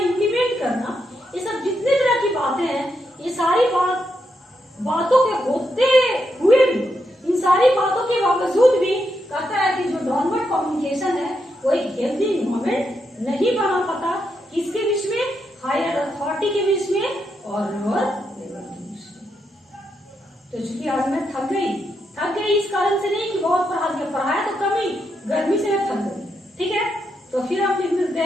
करना, ये सब जितने तरह की बातें हैं, ये सारी बातों के होते हुए भी, इन सारी बातों के बावजूद भी कहता है कि जो डाउनवर्ड कम्युनिकेशन है वो एक हेल्दी इन्वायरमेंट नहीं बना पाता, किसके बीच में, हायर अथॉरिटी के बीच में और लोअर लेवल के बीच में। तो चूंकि आज मैं थक गई इस कारण से नहीं कि बहुत पढ़ाया तो कम ही, गर्मी से मैं थक गई। ठीक है, तो फिर आप मिलते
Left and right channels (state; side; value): normal; both; correlation 0.82